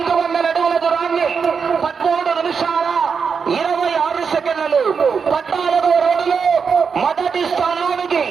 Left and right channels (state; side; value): quieter; left; 5.9 dB